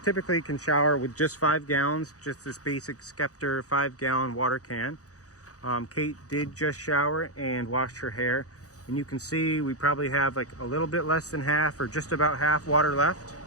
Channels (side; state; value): right; late; 0.66 ms